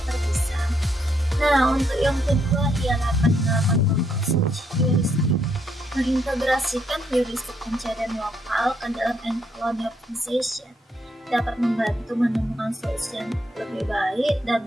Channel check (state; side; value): normal; both; correlation 0.75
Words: terpisah. Nah, untuk yang kedua ialah penerapan search heuristic. Mengintegrasikan heuristik pencarian lokal ke dalam N-colony optimization dapat membantu menemukan solusi yang lebih baik dan